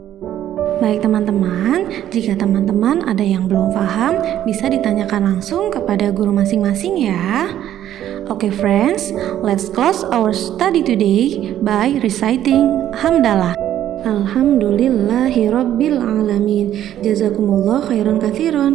Baik teman-teman, jika teman-teman ada yang belum paham, bisa ditanyakan langsung kepada guru masing-masing ya. Okay friends, let's close our study today by reciting Hamdalah. Alhamdulillahirabbil alamin. Jazakumullah khairan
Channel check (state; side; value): quieter; left; 11.6 dB